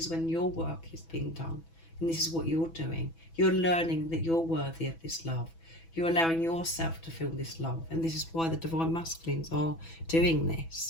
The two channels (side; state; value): right; late; 6.1 ms